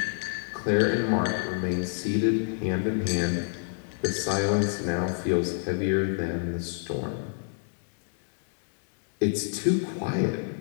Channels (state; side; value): silent; right; 59 dB below the other